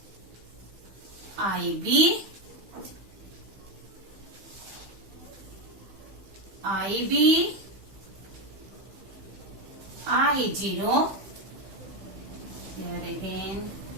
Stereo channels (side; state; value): left; late; 15 ms